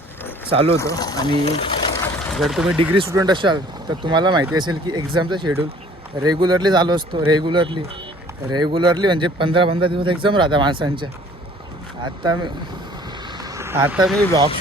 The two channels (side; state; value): both; normal; correlation 0.54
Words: चालू होतं. आणि जर तुम्ही डिग्री स्टुडंट असाल तर तुम्हाला माहिती असेल की एक्झामचा शेड्यूल रेग्युलरली चालू असतो. रेग्युलरली म्हणजे 15-15 दिवस एक्झाम राहतात माणसांच्या. आता मी ब्लॉग